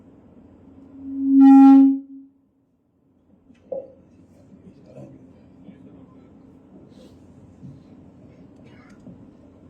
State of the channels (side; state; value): both; identical; correlation 1.00